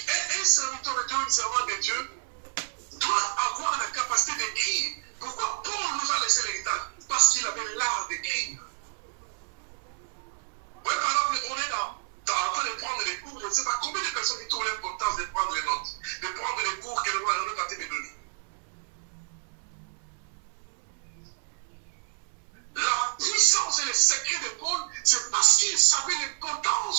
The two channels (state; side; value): silent; left; 58 dB below the other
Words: serviteur de Dieu, une servante de Dieu, doit avoir la capacité d'écrire. Pourquoi Paul nous a laissé l'héritage? Parce qu'il avait l'art d'écrire. Oui, par exemple, on est en train de prendre les cours, je ne sais pas combien de personnes qui trouvent l'importance de prendre les notes, de prendre les cours que le roi est en train de donner. La puissance et le secret de Paul, c'est parce qu'il savait